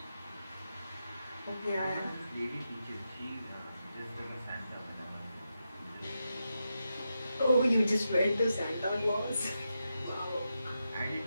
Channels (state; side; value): inverted; both; correlation -0.87